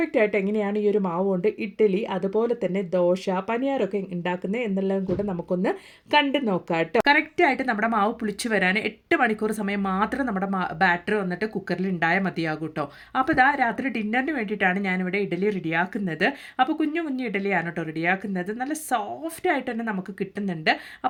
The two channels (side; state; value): both; identical; correlation 1.00